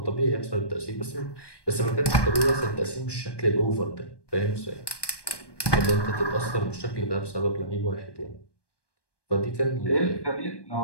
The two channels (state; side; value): late; right; 1.2 ms